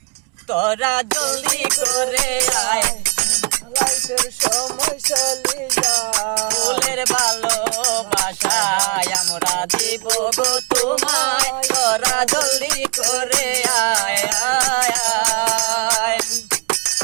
তোরা জলদি করে আয়, লাইফের সময় চলে যায়। ফুলের ভালোবাসা আমরা দিব গো তোমায়। তোরা জলদি করে আয় আয় আয়।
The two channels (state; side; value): quieter; left; 30.9 dB